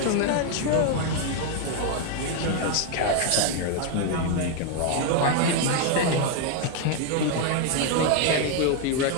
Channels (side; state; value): both; different; correlation 0.01